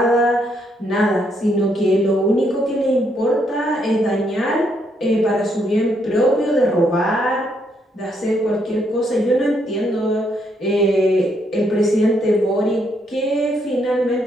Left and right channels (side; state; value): both; normal; correlation 0.74